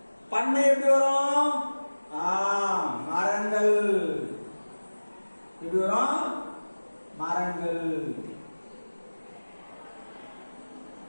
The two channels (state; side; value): inverted; both; correlation -1.00